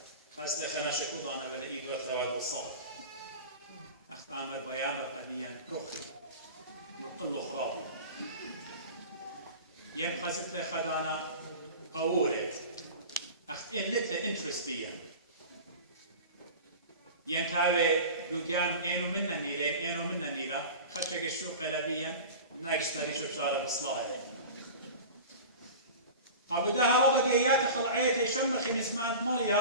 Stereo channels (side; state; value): both; inverted; correlation -0.34